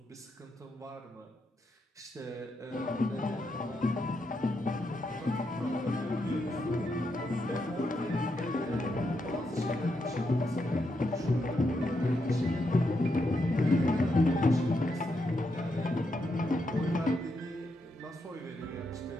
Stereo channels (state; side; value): normal; both; correlation 0.81